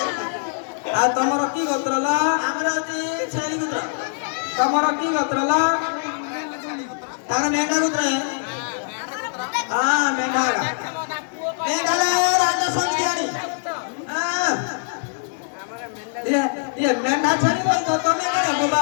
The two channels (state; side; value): silent; right; digital silence